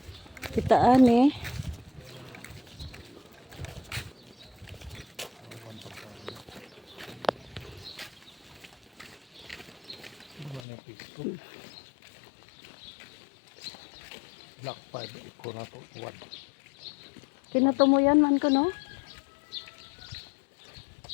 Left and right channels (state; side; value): drops out; right; at 10.7 s